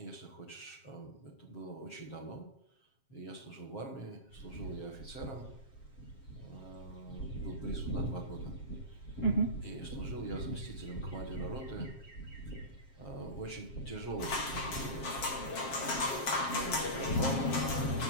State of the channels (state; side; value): late; right; 7.5 ms